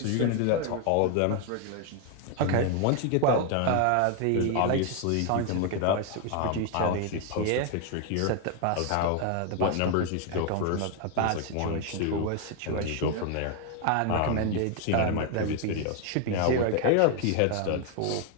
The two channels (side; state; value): both; different; correlation 0.01